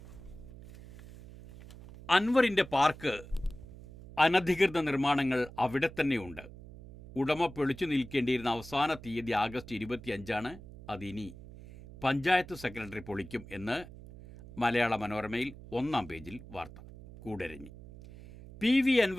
അൻവറിൻ്റെ പാർക്ക് അനധികൃത നിർമ്മാണങ്ങൾ അവിടെ തന്നെയുണ്ട്. ഉടമ പൊളിച്ചു നിൽക്കേണ്ടിയിരുന്ന അവസാന തീയതി ആഗസ്റ്റ് 25 അതിനി പഞ്ചായത്ത് സെക്രട്ടറി പൊളിക്കും എന്ന് മലയാള മനോരമയിൽ 1-ാം പേജിൽ വാർത്ത. കൂടരഞ്ഞി. PV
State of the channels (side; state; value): right; noise; hum, 16 dB below the sound